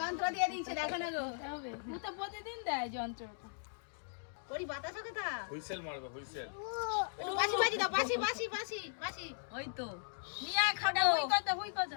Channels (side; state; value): right; silent; digital silence